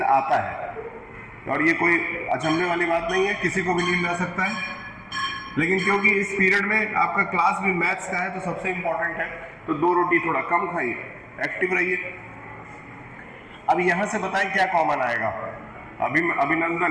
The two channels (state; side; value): identical; both; correlation 1.00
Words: आता है और ये कोई अचंभे वाली बात नहीं है, किसी को भी नींद आ सकता है। लेकिन क्योंकि इस पीरियड में आपका क्लास भी मैथ्स का है तो सबसे इंपॉर्टेंट है, तो 2 रोटी थोड़ा कम खाइए, एक्टिव रहिए। अब यहां से बताएं क्या कॉमन आएगा।